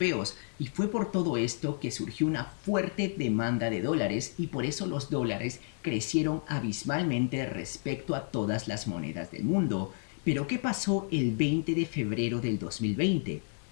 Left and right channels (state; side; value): silent; right; 57 dB below the other